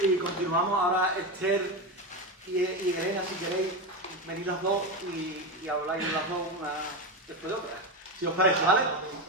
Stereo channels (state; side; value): normal; both; correlation 0.16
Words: continuamos. Ahora Esther y Elena, si queréis, venid las dos y habláis las dos una después de otra. Si os parece, ¿vale?